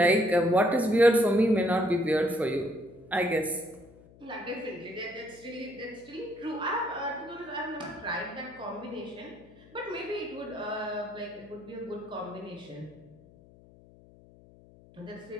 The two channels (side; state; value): left; noise; hum, 24 dB below the sound